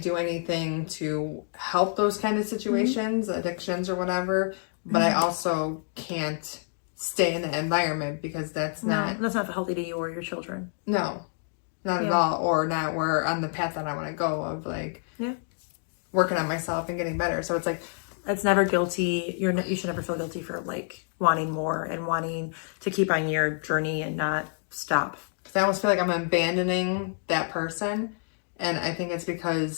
do anything to help those kind of situations, addictions or whatever, but I also can't stay in the environment because that's not healthy to you or your children. No, not at all, or not where on the path that I want to go of working on myself and getting better. So it's like, it's never guilty. You should never feel guilty for like wanting more and wanting to keep on your journey and not stop. because I almost feel like I'm abandoning that person. And I think it's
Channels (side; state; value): right; silent; 58 dB below the other